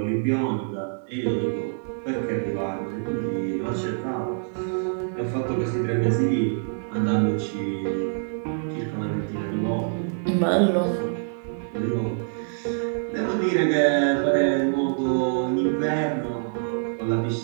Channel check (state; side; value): silent; left; digital silence